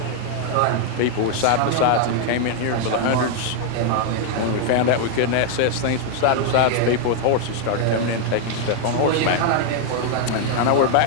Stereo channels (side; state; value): both; different; correlation 0.00